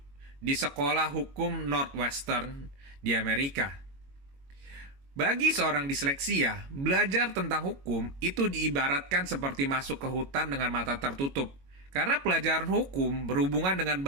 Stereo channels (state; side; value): late; left; 22 ms